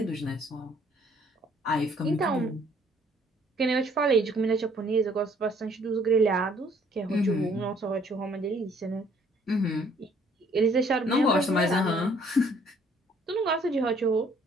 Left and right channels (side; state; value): both; normal; correlation 0.62